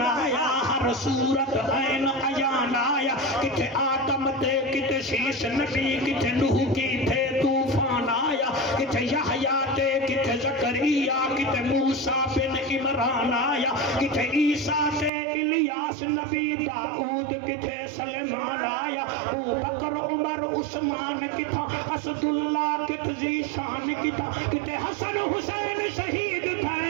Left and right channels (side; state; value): left; drops out; at 15.1 s